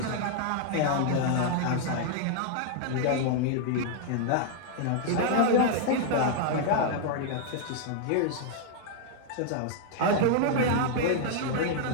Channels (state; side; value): different; both; correlation -0.01